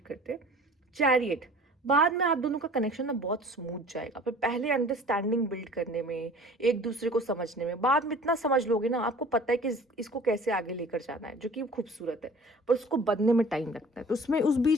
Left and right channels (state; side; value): normal; both; correlation 0.46